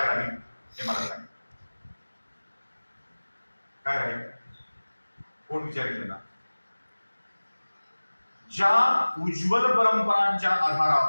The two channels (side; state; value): both; inverted; correlation -1.00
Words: राहील हे मला सांग. काय राहील? कोण विचारिले ना? ज्या उज्ज्वल परंपरांच्या